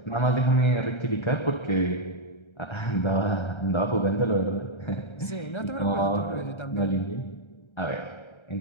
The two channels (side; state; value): right; late; 1.3 ms